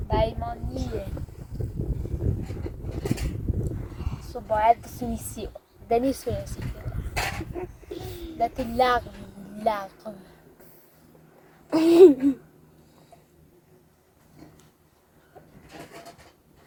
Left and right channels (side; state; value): both; identical; correlation 1.00